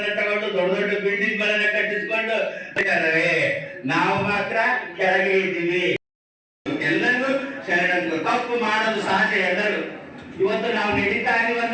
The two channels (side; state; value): both; identical; correlation 1.00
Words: ತಗೊಂಡು ದೊಡ್ಡ ದೊಡ್ಡ ಬಿಲ್ಡಿಂಗ್ ಗಳನ್ನ ಕಟ್ಟಿಸ್ಕೊಂಡು ನಾವು ಮಾತ್ರ ಕೆಳಗೆ ಇದ್ದೀವಿ. ಎಲ್ಲರೂ ಶರಣರು, ತಪ್ಪು ಮಾಡೋದು ಸಹಜ ಎಲ್ಲರೂ. ಇವತ್ತು ನಾವು ನಡೀತಾ ಇದೀವಿ